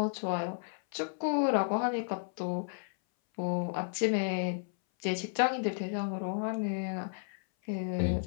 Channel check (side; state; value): right; silent; 56 dB below the other